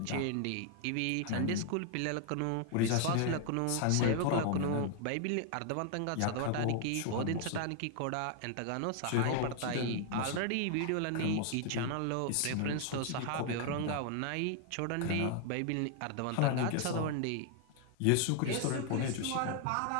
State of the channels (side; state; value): both; different; correlation 0.00